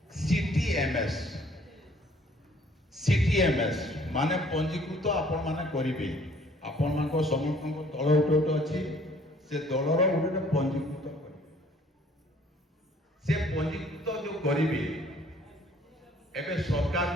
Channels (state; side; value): normal; both; correlation 0.58